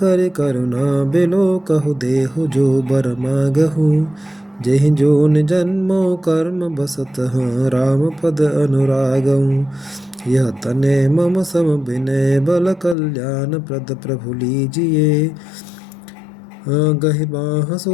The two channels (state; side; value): drops out; right; at 13.0 s